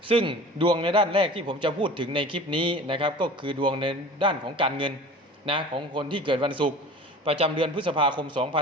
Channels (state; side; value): normal; both; correlation 0.41